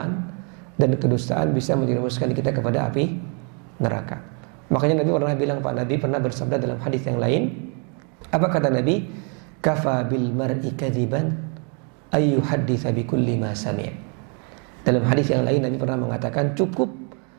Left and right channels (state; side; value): quieter; left; 38.1 dB